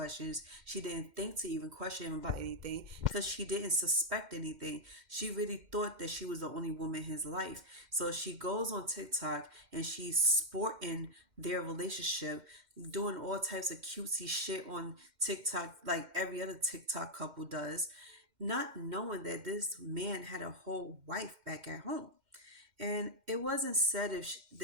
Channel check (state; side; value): late; left; 2.1 ms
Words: She didn't think to even question him about anything, because she didn't suspect anything. She really thought that she was the only woman in his life. So she goes on TikTok and she's sporting their relationship, doing all types of cutesy shit on TikTok like every other TikTok couple does, not knowing that this man had a whole wife back at home. And it wasn't said if